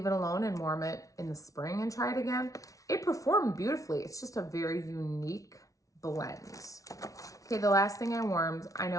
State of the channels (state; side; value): late; right; 0.17 ms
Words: it alone and warm it in the spring and try it again. It performed beautifully. It's just a very unique blend. Okay, the last thing I warmed, I